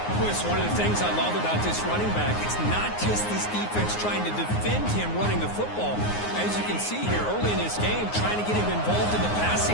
Chris, one of the things I love about this running back, it's not just this defense trying to defend him running the football. As you can see here early in this game, trying to get him involved in the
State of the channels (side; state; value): right; late; 9.6 ms